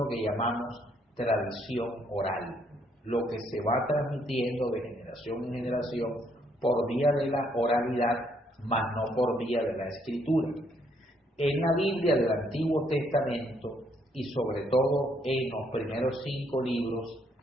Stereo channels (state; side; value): normal; both; correlation 0.70